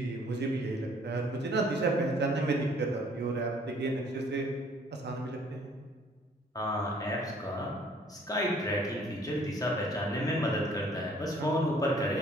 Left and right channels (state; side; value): normal; both; correlation 0.58